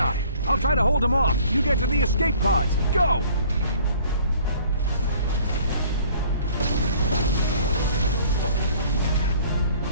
I'll try to hold him off. You get to the escape pods. Go!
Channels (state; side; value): inverted; both; correlation -0.54